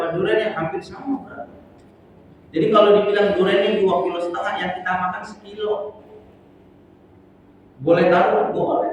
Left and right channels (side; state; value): both; identical; correlation 1.00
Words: durian yang hampir sama kan? Jadi kalau dibilang duriannya 2,5 kilo, yang kita makan 1 kilo. Boleh taruh?